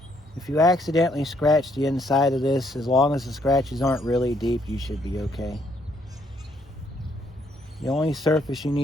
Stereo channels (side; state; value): both; normal; correlation 0.70